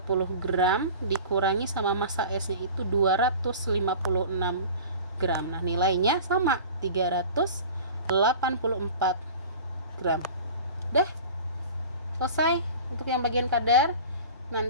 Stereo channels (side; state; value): both; inverted; correlation -0.39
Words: gram dikurangi sama massa S-nya itu 256 gram. Nah, nilainya sama 384 gram. Udah selesai untuk yang bagian kadar.